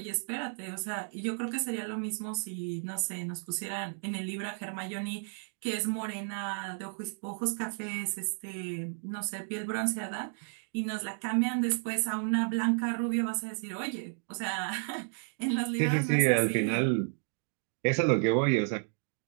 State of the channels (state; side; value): silent; left; digital silence